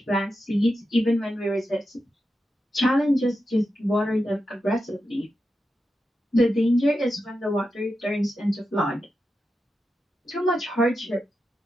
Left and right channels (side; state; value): both; normal; correlation 0.89